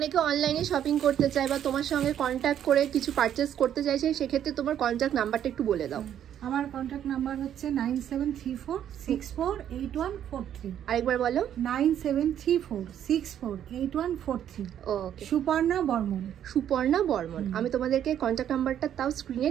অনলাইনে শপিং করতে চায় বা তোমার সঙ্গে কন্ট্যাক্ট করে কিছু পারচেস করতে চাইছে, সেক্ষেত্রে তোমার কন্ট্যাক্ট নাম্বারটা একটু বলে দাও। আমার কন্ট্যাক্ট নাম্বার হচ্ছে 9734648143। আরেকবার বলো। 9734648143। ওকে, সুপর্ণা বর্মন। সুপর্ণা বর্মন। আমি তোমাদেরকে কন্ট্যাক্ট নাম্বারটা তাও স্ক্রিনে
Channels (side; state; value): left; quieter; 10.1 dB